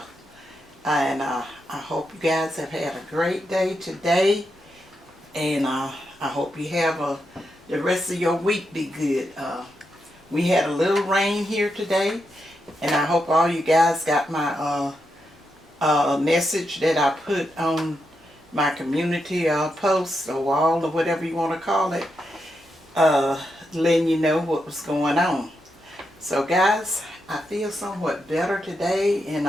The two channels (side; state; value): both; normal; correlation 0.84